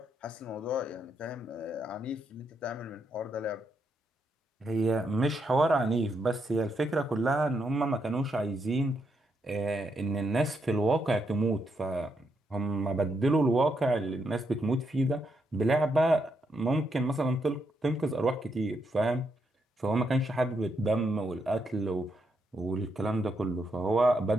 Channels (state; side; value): normal; both; correlation 0.79